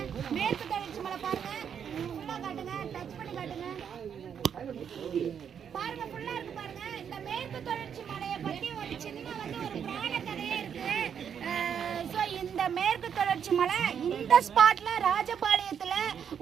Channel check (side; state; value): left; quieter; 7.9 dB